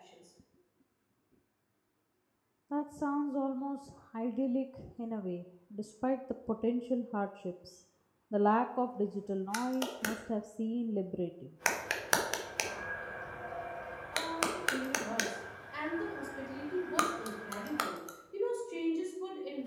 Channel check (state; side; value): identical; both; correlation 1.00